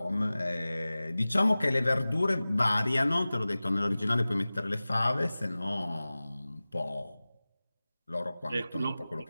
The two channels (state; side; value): inverted; both; correlation -0.98